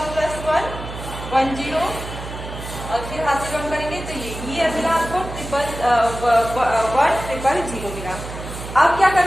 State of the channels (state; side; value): noise; right; hum, 10 dB below the sound